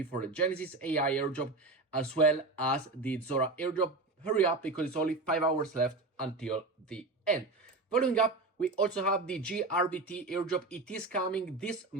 for the Genesis AI airdrop as well as the Zora airdrop. Hurry up because it's only 5 hours left until the end. Following up, we also have the GRBT airdrop. It is coming this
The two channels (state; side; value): quieter; left; 3.3 dB